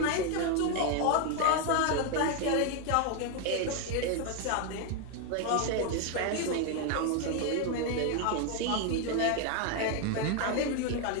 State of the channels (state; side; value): different; both; correlation 0.01